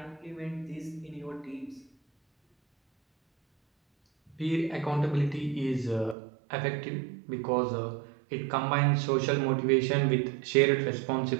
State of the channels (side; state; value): left; drops out; at 6.2 s